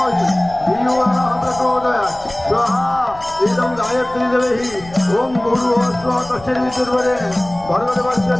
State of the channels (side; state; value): left; noise; rumble, 19 dB below the sound